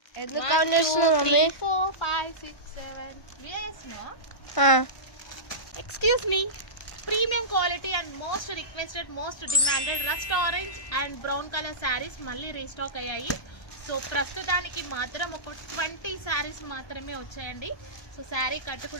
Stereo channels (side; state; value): right; late; 1.1 ms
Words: ఎందుకు కౌంట్ చేస్తున్నావు mummy? 4 5 6 7 excuse me. Premium quality and most requested, most demanded rust orange and brown colour saris మళ్ళీ restock అయ్యాయి. So ప్రస్తుతానికి మాత్రం ఒక 20 శారీస్ మాత్రమే వచ్చాయండి. సో శారీ